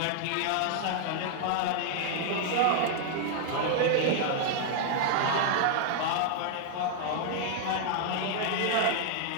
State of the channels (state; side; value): different; both; correlation 0.00